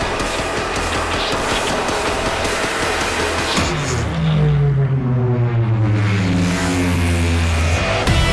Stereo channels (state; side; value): identical; both; correlation 1.00